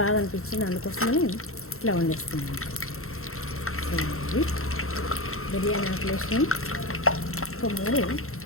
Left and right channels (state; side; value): late; right; 0.62 ms